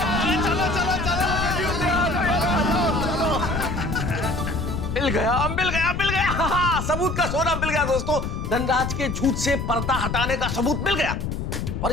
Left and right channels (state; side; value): noise; left; rumble, 3 dB below the sound